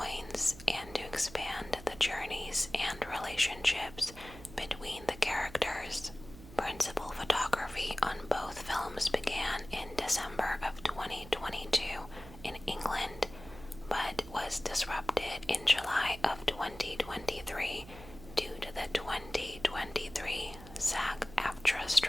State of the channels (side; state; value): right; noise; hum, 16 dB below the sound